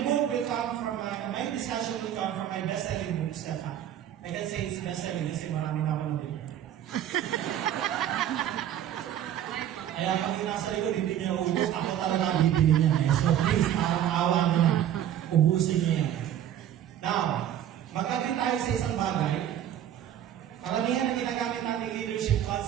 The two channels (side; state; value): left; quieter; 10.9 dB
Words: book will come from my discussion will come from my best-selling book, Step Up. I can say it's best-selling kasi marami na ako nabili. Kaya pag yung nasa likod, hindi niya ubus, ako talaga ang bibili niya. So please, awa mo na. Ubusin niya yan. Now, magkabit tayo sa isang bagay. Karamihan na ginagamit natin leadership